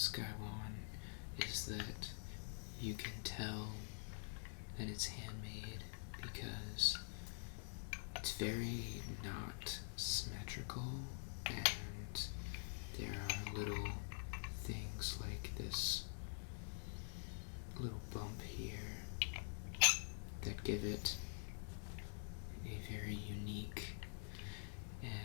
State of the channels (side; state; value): right; silent; digital silence